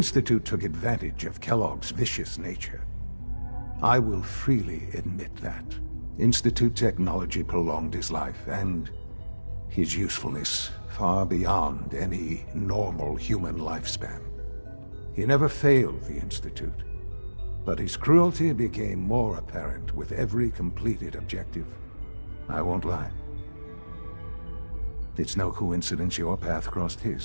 took advantage of Kellogg's vicious nature. I will freely admit that. Institute technology prolonged his life, and his usefulness far beyond any normal human lifespan. He never failed the Institute, but his cruelty became more apparent with every completed objective. I won't lie. It's no coincidence your path crossed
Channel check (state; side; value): inverted; both; correlation -1.00